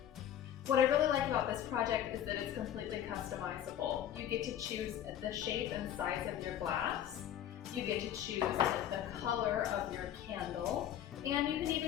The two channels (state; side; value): quieter; right; 10.7 dB